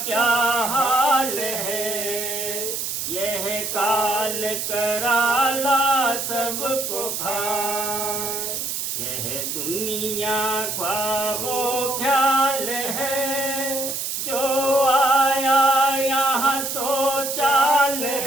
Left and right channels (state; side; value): noise; right; hiss, 3 dB below the sound